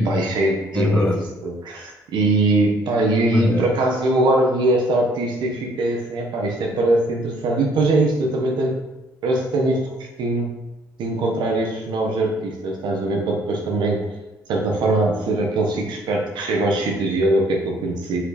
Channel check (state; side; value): normal; both; correlation 0.61